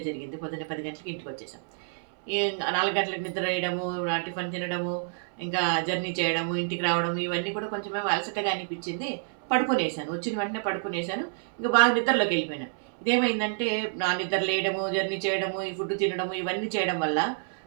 జరిగింది. పొద్దున్నే 10 గంటలకి ఇంటికొచ్చేసాం. ఈ 4 గంటలకు నిద్ర వేయడము, టిఫిన్ తినడము, ఇంకా జర్నీ చేయడము, ఇంటికి రావడం ఇవన్నీ కూడా కొంచెమేమో అలసటగా అనిపిచ్చింది. పడుకునేసాను. వచ్చిన వెంటనే పడుకునేసాను. ఇంక బాగా నిద్రలోకెళ్ళిపోయాను. ఇదేమైందంటే నా నిద్ర లేయడము, జర్నీ చేయడము, ఈ ఫుడ్ తినడము ఇవన్నీ చేయడం వల్ల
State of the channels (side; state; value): left; silent; 59 dB below the other